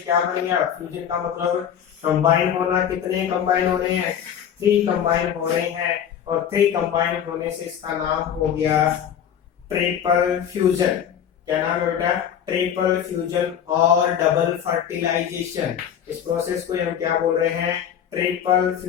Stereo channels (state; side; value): quieter; right; 9.0 dB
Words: क्या बन गया, फ्यूजन का मतलब कंबाइन होना। कितने कंबाइन हो रहे हैं, 3 कंबाइन हो रहे हैं, और 3 कंबाइन होने से इसका नाम हो गया ट्रिपल फ्यूजन। क्या नाम है बेटा, ट्रिपल फ्यूजन और डबल फर्टिलाइजेशन। इस प्रोसेस को हम क्या बोल रहे हैं, ट्रिपल